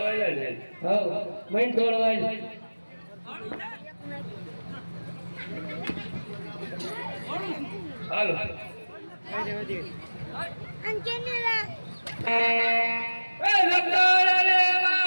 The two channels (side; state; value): both; inverted; correlation -1.00